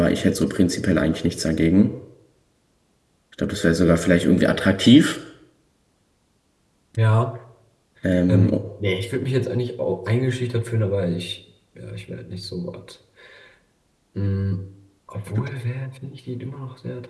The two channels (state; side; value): identical; both; correlation 1.00